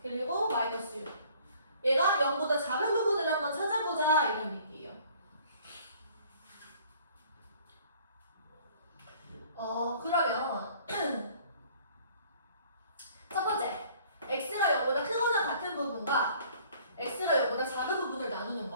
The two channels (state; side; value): inverted; both; correlation -0.56